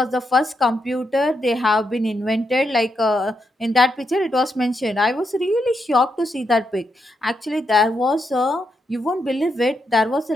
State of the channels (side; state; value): both; normal; correlation 0.82